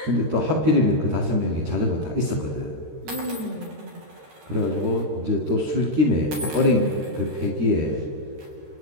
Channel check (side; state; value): left; late; 13 ms